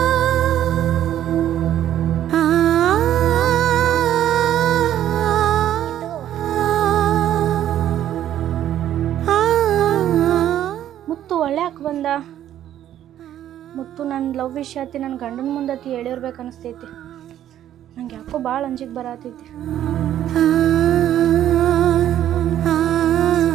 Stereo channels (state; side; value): quieter; left; 11.5 dB